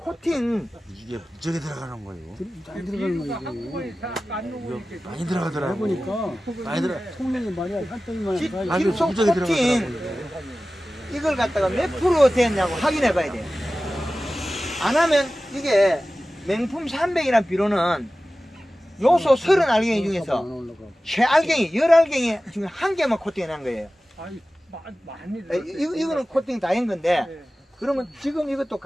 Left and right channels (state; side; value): normal; both; correlation 0.96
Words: 이게 무지하게 들어가는 거예요. 많이 들어가는 비료가 거지. 한꺼번에 다안 녹으니까. 많이 들어가더라고. 해보니까 많이 들어. 통영이 말이야 한 덩이만 질- 가. 아주 질소 무지하게 코팅 들어가더라고. 이걸 갖다가 몇 프로 됐냐고 확인해봐야 돼요. 안 하면 이게 명품 300이라는 비료는 요소 30알갱이 중에서 최알갱이 10알갱이 중에 한 개만 코팅해놓은 거예요. 아니, 많이 들어. 이거는 코팅 다 한 건데 예. 그러면 지금 이것도